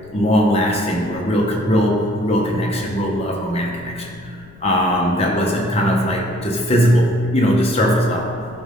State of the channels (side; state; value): left; noise; rumble, 22 dB below the sound